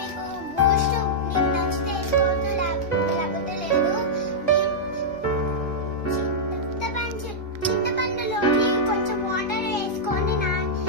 బూస్ట్ మీకు నచ్చితే వేసుకోవచ్చు, లేకపోతే లేదు. చింతపండులోని కొంచెం వాటర్ వేసుకొని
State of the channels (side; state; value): both; normal; correlation -0.09